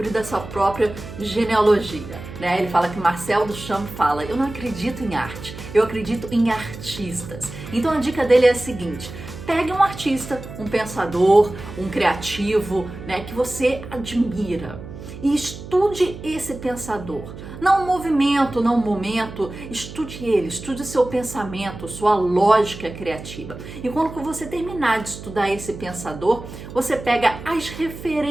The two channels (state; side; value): noise; right; hum, 13 dB below the sound